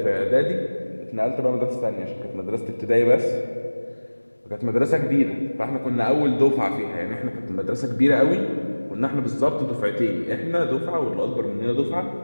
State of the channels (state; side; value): inverted; both; correlation -1.00